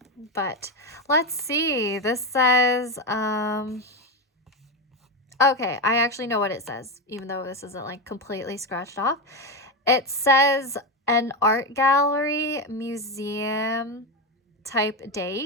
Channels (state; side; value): normal; both; correlation 0.12